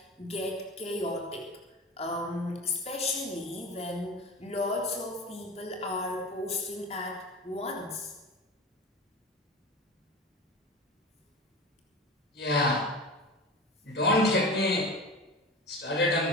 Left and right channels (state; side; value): normal; both; correlation 0.31